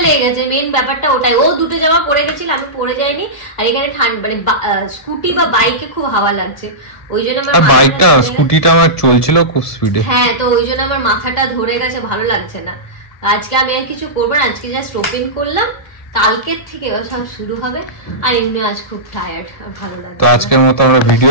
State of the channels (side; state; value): right; late; 2.0 ms